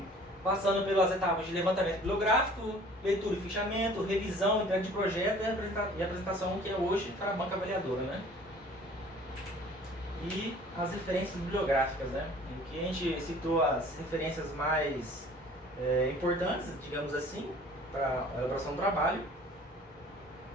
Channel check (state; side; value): normal; both; correlation 0.50